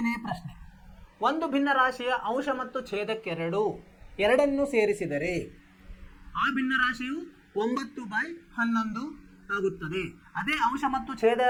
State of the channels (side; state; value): both; identical; correlation 1.00